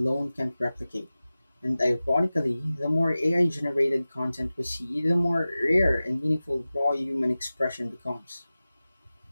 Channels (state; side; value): inverted; both; correlation -0.96